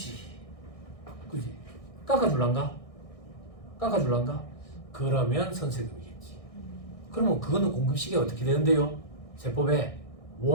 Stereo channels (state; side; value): late; right; 1.6 ms